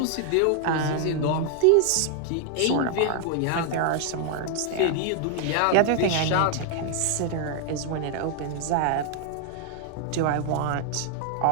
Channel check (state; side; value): different; both; correlation 0.00